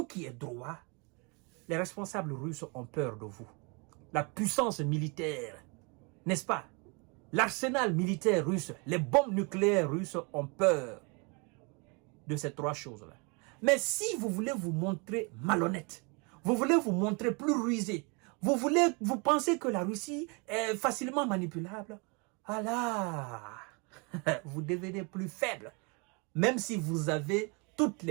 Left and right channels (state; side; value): quieter; left; 31.8 dB